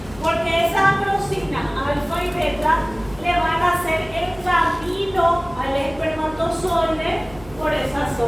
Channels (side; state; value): right; noise; hum, 19 dB below the sound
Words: Porque esa acrosina alfa y beta le van a hacer el camino al espermatozoide por esa